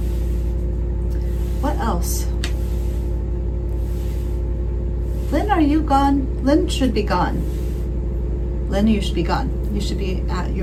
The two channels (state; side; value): identical; both; correlation 1.00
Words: What else? Lynn, are you gone? Lynn should be gone. Lynn, you should be gone. You should be at